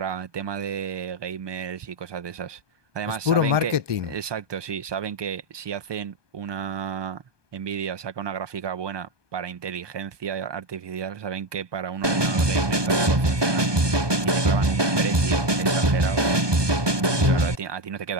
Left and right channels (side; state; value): left; late; 1.2 ms